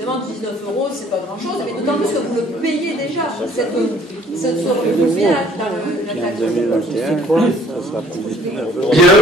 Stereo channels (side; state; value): both; normal; correlation 0.57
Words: 19 €, c'est pas grand-chose, mais d'autant plus que vous le payez déjà. Vous payez la taxe. Bien,